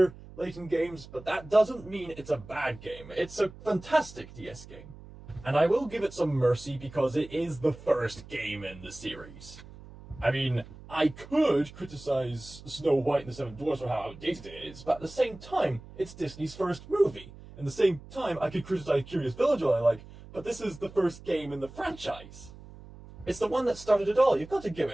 Layton games, but that doesn't mean it's a bad game. It's a fantastic DS game. And I will give it some mercy because it is the first game in the series. I mean, I could criticize Snow White and the Seven Dwarfs for how outdated it is, but at the same time, it's Disney's first movie. At the same time, I could criticize Curious Village all I like, but this is the first game in the franchise. It's the one that started it all. You've got to give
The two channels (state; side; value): noise; right; hum, 18 dB below the sound